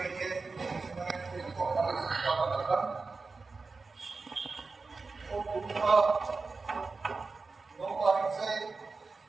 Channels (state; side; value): quieter; left; 4.1 dB